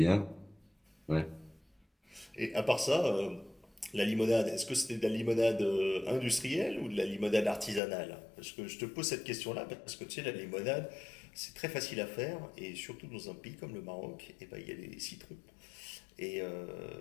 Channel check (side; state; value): right; drops out; at 7.8 s